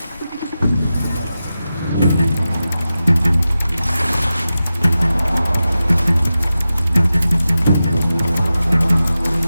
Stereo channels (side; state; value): both; inverted; correlation -0.93